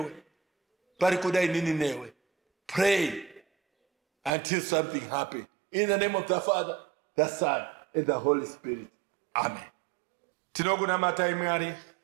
Parikudai nini newe. Pray until something happens. In the name of the Father, the Son, and the Holy Spirit. Amen. Tinoguna matai Mwari.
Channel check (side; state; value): left; drops out; at 4.3 s